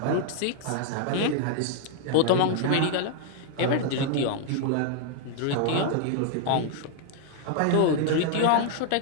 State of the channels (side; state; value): both; different; correlation 0.00